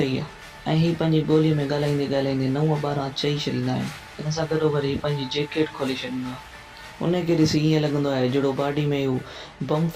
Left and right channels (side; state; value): both; identical; correlation 1.00